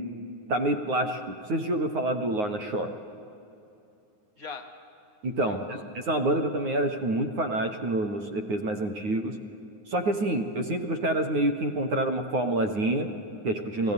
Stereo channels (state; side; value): late; left; 9.6 ms